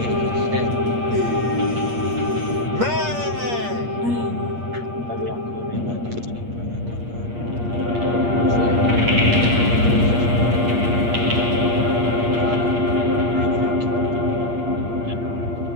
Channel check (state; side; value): late; left; 8.5 ms